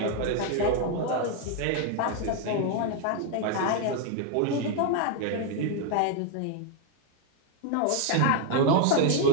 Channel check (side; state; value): both; different; correlation 0.01